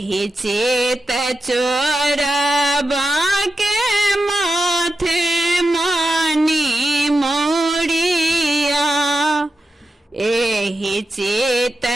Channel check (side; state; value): both; normal; correlation 0.90